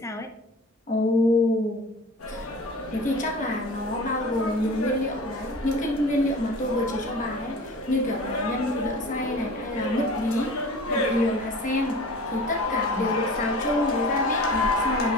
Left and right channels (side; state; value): both; normal; correlation 0.39